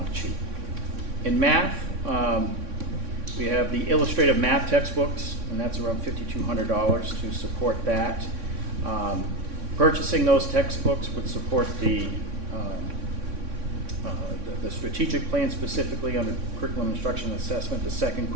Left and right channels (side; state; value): left; late; 3.6 ms